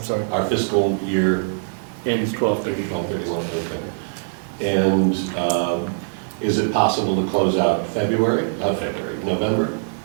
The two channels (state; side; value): silent; left; digital silence